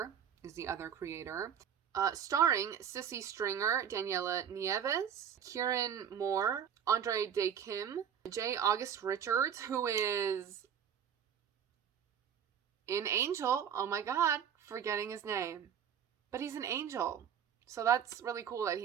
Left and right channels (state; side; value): quieter; left; 8.4 dB